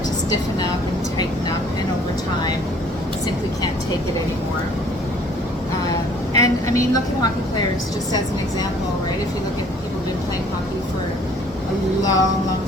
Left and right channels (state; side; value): normal; both; correlation 0.56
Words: to stiffen up and tighten up, and over time simply can't take it anymore. And I mean, look at hockey players just as an example, right? If you look at people who've been playing hockey for a long, long